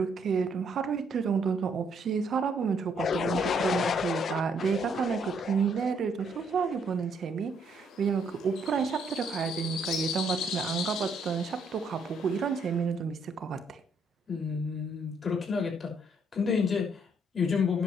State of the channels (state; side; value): normal; both; correlation 0.69